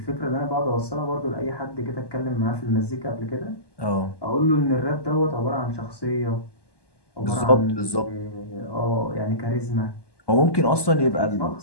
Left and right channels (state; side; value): late; right; 1.1 ms